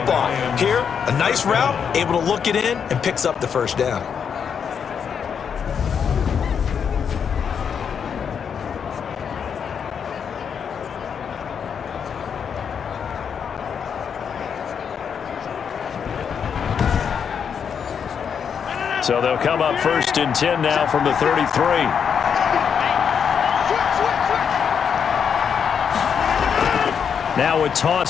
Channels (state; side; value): quieter; right; 7.2 dB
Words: Here, a nice route, able to look it in, and picks up the first down. So they'll come up 1st and 10 now from the 33. Now a